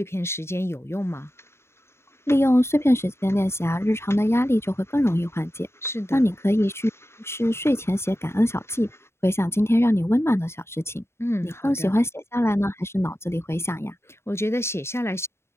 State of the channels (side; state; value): right; late; 0.12 ms